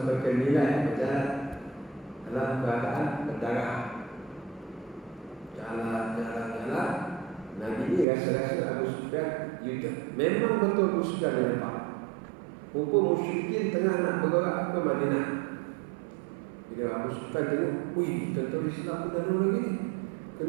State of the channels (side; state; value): left; drops out; at 8.1 s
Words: ke Nilai, berjalan dalam keadaan berdarah. Jalan. Nabi ni rasa-rasa Abu Sufyan U-turn. Memang betul Abu Sufyan yang nampak. Hukum musyrikin tengah nak bergerak ke Madinah. Bila Abu Sufyan tengok, wih, tentera Islam pun dah lagi ni.